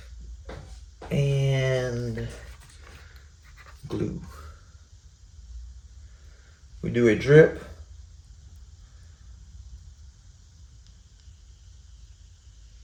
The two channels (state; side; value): identical; both; correlation 1.00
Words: And glue. We do a drip.